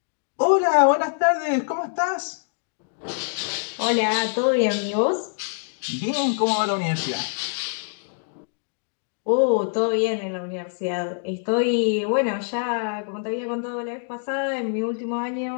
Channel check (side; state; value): right; silent; digital silence